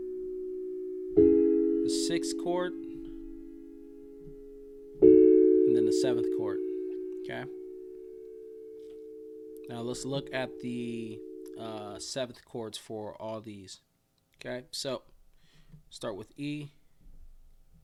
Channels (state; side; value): identical; both; correlation 1.00